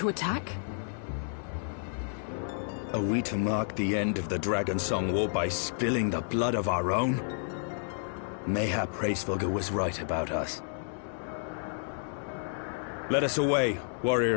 attack. Are we to mark the end of the Dragonsong War by spilling the blood of our own? Mayhap Hraesvelgr was right about us. Let us away,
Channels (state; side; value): silent; right; digital silence